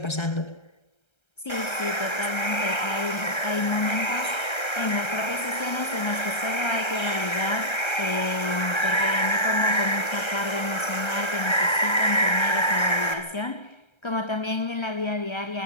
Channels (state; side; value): late; right; 1.3 ms